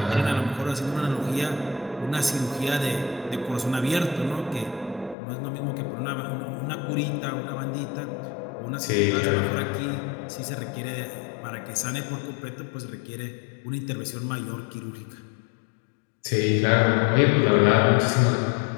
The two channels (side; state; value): right; drops out; at 5.2 s